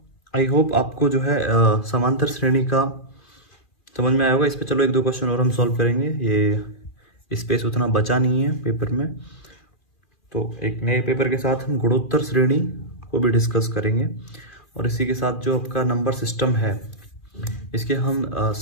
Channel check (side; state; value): right; late; 2.4 ms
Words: आई होप आपको जो है समांतर श्रेणी का समझ में आया होगा। इस पे चलो 1-2 क्वेश्चन और हम सॉल्व करेंगे, ये स्पेस उतना बचा नहीं है पेपर में। तो एक नए पेपर के साथ हम गुणोत्तर श्रेणी को भी डिस्कस करेंगे, और इसी के साथ जो आपका नंबर सिस्टम है इसके हम